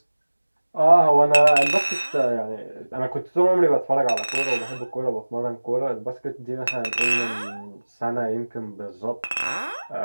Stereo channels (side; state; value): both; inverted; correlation -1.00